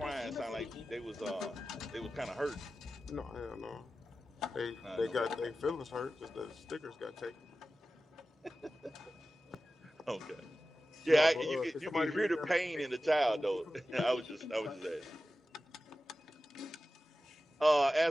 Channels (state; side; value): normal; both; correlation 0.94